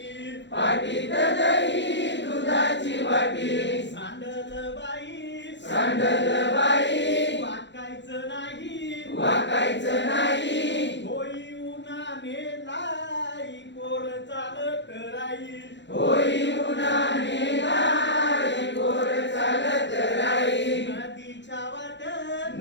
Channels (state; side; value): late; right; 0.52 ms